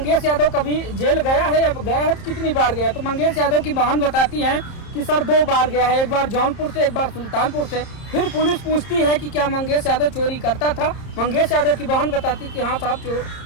यादव कभी जेल गया है या गया है तो कितनी बार गया, तो मंगेश यादव की बहन बताती है कि सर 2 बार गया है, एक बार जौनपुर से, एक बार सुल्तानपुर से। फिर पुलिस पूछती है कि क्या मंगेश यादव चोरी करता था? मंगेश यादव की बहन बताती कि हाँ साहब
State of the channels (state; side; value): late; right; 30 ms